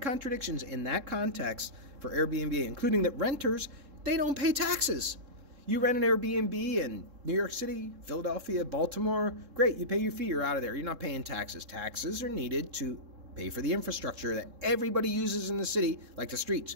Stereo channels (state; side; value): late; left; 3.7 ms